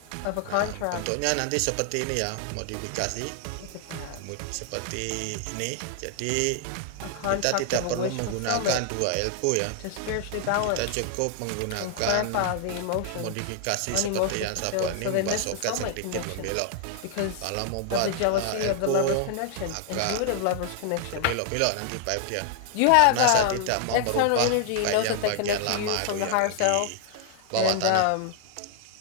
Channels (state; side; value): different; both; correlation 0.00